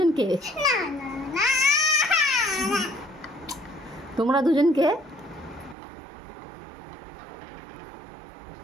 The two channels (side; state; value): left; drops out; at 5.8 s